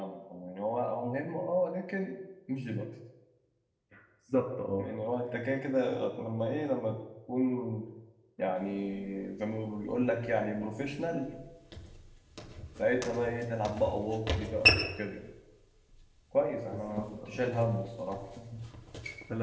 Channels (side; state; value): both; identical; correlation 1.00